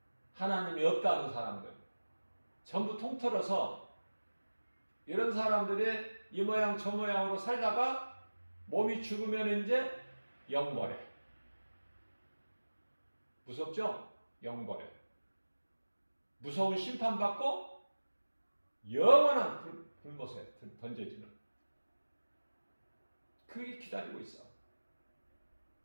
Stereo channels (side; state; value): both; inverted; correlation -1.00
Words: 하나님이 없다는 사람들, 전부 통틀어서 이런 사람들이 이 모양 저 모양으로 살다가 몸이 죽으면 이제 영벌에. 무섭죠? 영벌에. 무서운 심판받고 영원한 불못에 던져지는. 그게 기다리고 있어.